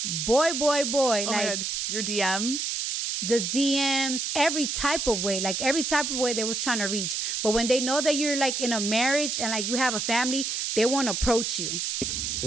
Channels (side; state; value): right; noise; hiss, 1 dB below the sound